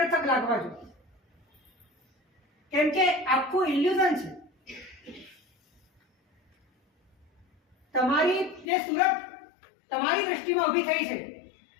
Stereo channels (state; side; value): drops out; right; at 8.7 s